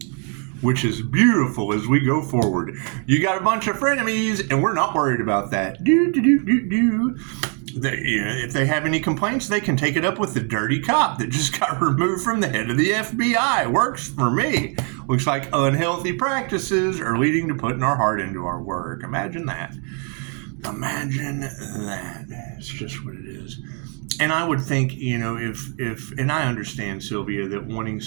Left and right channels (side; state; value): left; quieter; 39.9 dB